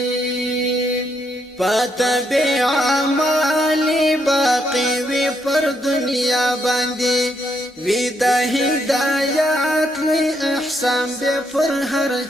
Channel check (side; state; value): both; normal; correlation 0.76